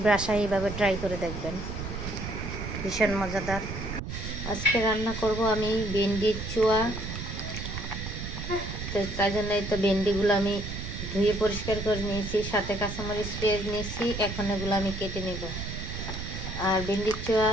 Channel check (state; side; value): noise; right; rumble, 6 dB below the sound